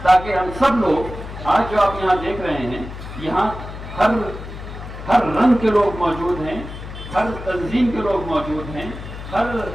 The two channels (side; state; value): left; noise; hum, 11 dB below the sound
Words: تاکہ ہم سب لوگ آج جو آپ یہاں دیکھ رہے ہیں، یہاں ہر رنگ کے لوگ موجود ہیں، ہر تنظیم کے لوگ موجود ہیں، ہر